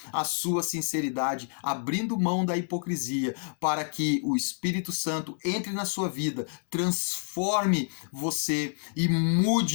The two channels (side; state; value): right; silent; digital silence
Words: à sua sinceridade, abrindo mão da hipocrisia, para que o Espírito Santo entre na sua vida, transforme você e